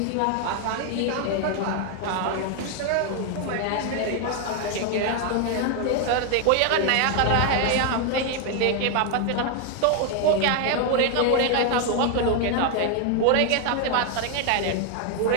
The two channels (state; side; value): different; both; correlation 0.01